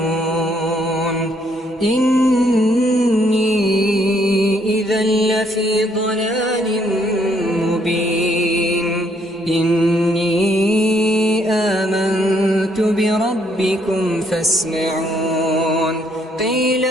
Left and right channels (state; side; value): normal; both; correlation 0.69